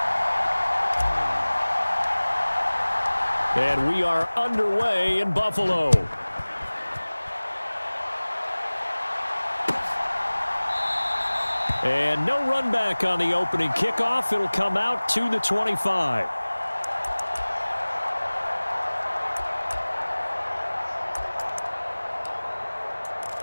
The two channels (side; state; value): both; inverted; correlation -1.00